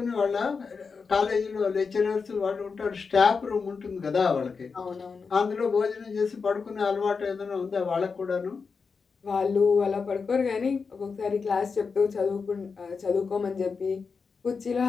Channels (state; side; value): quieter; right; 5.1 dB